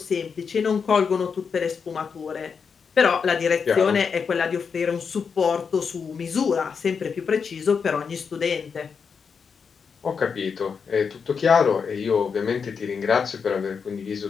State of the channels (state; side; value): quieter; right; 6.0 dB